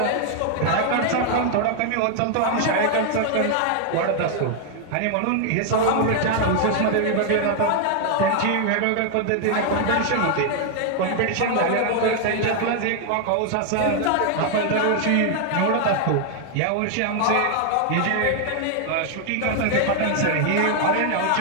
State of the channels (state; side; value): different; both; correlation 0.00